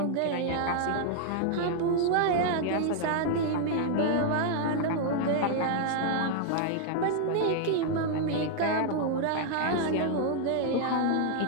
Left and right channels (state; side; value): different; both; correlation 0.00